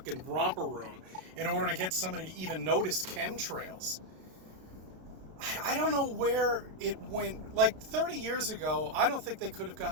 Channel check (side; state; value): left; late; 32 ms